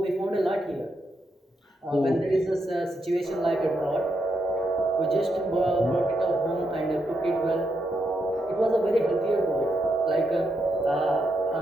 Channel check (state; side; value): normal; both; correlation 0.81